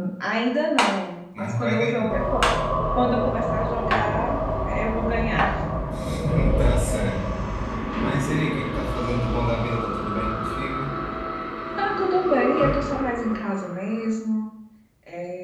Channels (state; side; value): identical; both; correlation 1.00